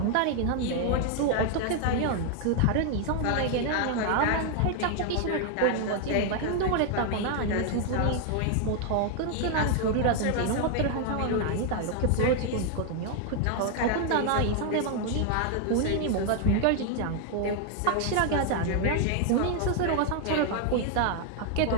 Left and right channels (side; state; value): both; different; correlation 0.00